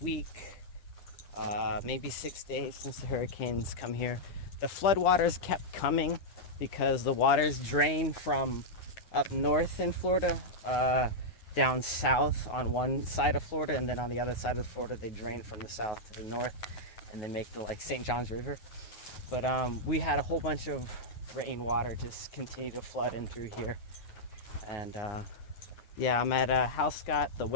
maybe 6 days since the hurricanes come here. The floodwaters kept coming because the waters drain from up north in Florida, down south on one side of Florida, and then on the other side of Florida they drain from the south to the north and then make the St. John's River. But we had a whole bunch of rainwater just continue to flood in through here. And yeah, I'm at Housecott, the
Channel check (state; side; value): late; right; 9.5 ms